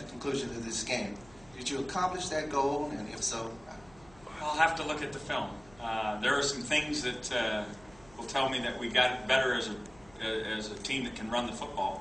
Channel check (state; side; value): noise; right; hum, 25 dB below the sound